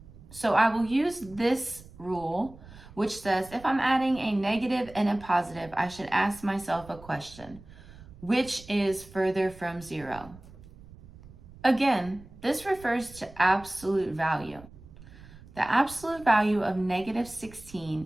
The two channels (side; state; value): right; noise; rumble, 20 dB below the sound